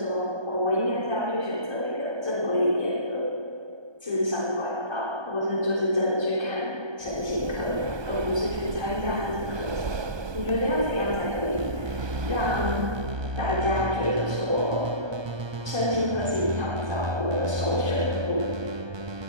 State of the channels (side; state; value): left; late; 1.2 ms